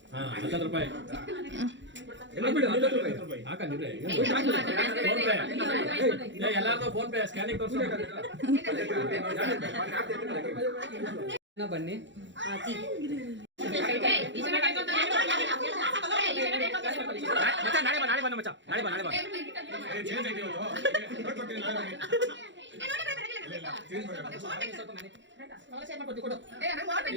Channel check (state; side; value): late; left; 0.54 ms